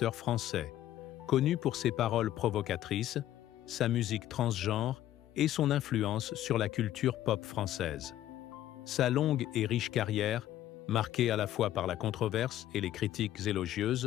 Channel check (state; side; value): quieter; right; 12.8 dB